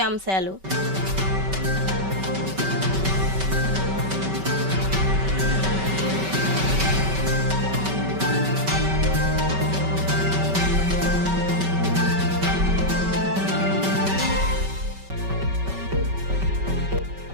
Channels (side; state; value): left; late; 5.2 ms